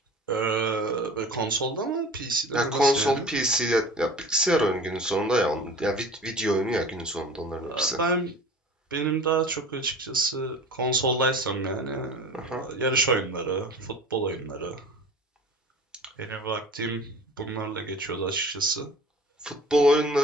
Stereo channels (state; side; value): normal; both; correlation 0.40